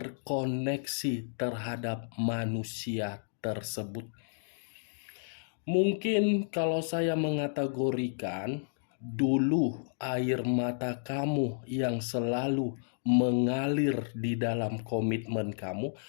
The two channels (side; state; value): right; silent; digital silence